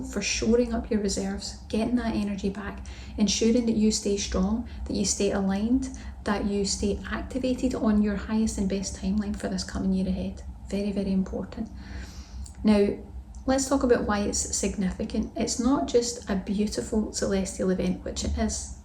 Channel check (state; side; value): identical; both; correlation 1.00